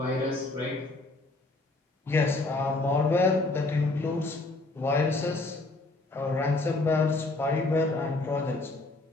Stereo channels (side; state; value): right; quieter; 3.1 dB